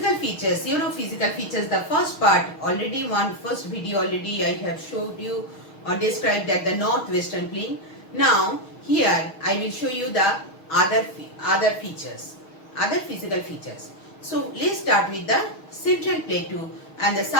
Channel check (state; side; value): late; right; 6.4 ms